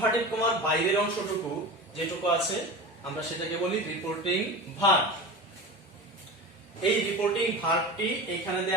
কমার বাইরের অংশটুকু যেটুকু আছে আমরা সেটাকে বলি রিপোর্টিং ভার্ব। এই রিপোর্টিং ভার্বটি এখানে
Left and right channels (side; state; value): both; normal; correlation 0.30